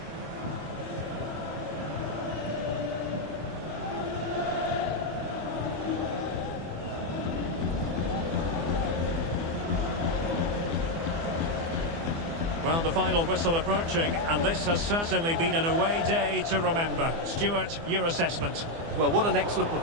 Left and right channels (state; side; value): late; left; 24 ms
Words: Well, the final whistle approaching, and this has certainly been an away day to remember. Stuart, your assessment? Well, what an excellent